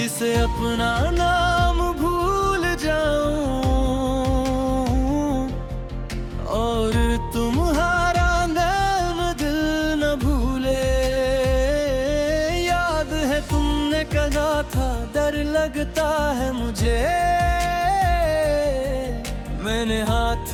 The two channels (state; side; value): identical; both; correlation 1.00